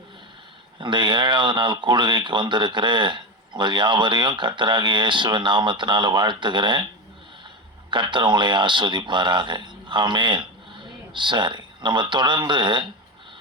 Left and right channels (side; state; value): both; normal; correlation 0.18